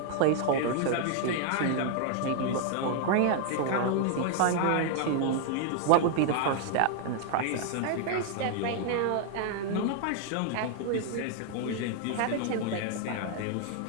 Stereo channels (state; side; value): different; both; correlation 0.00